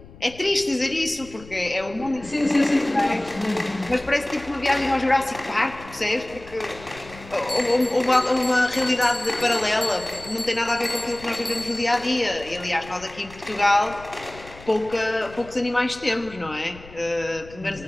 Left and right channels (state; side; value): noise; left; rumble, 19 dB below the sound